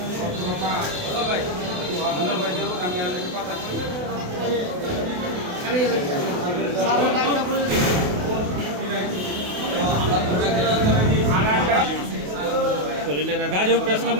গাজীপুর প্রেস ক্লাব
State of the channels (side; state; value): left; late; 28 ms